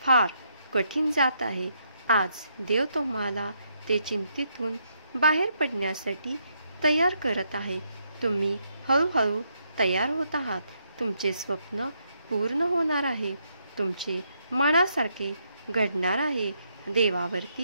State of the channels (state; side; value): inverted; both; correlation -0.76